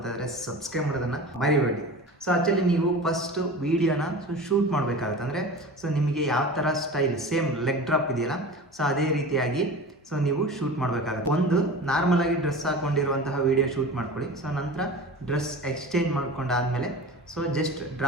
ಇದ್ದಾರೆ ಸಬ್ಸ್ಕ್ರೈಬ್ ಮಾಡೋದನ್ನು ಮರಿಬೇಡಿ. ಸೊ ಆ್ಯಕ್ಚುಲಿ ನೀವು ಫಸ್ಟ್ ವೀಡಿಯೋನ ಶೂಟ್ ಮಾಡಬೇಕಾಗುತ್ತೆ. ಅಂದರೆ ಸೊ ನಿಮಗೆ ಯಾವ ಥರ ಸ್ಟೈಲ್ ಸೇಮ್ ಲೆಗ್ ಡ್ರಾಪ್ ಇದೆಯಲ್ಲ, ಸೊ ಅದೇ ರೀತಿಯಾಗಿ ಸೊ ನೀವು ಶೂಟ್ ಮಾಡಬೇಕಾಗುತ್ತೆ. ಒಂದು ನಾರ್ಮಲಾಗಿ ಡ್ರೆಸ್ ಹಾಕ್ಕೊಂಡಿರುವಂತಹ ವೀಡಿಯೋ ಶೂಟ್ ಮಾಡ್ಕೊಳ್ಳಿ. ಸೊ ನಂತರ ಡ್ರೆಸ್ ಎಕ್ಸ್ಚೇಂಜ್ ಮಾಡ್ಕೊಂಡಾದ್ಮೇಲೆ ಸೊ ಜಸ್ಟ್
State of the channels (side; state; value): both; normal; correlation 0.34